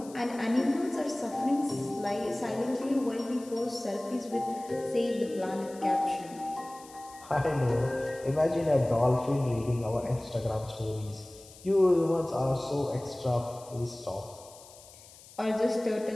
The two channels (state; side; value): noise; left; hiss, 21 dB below the sound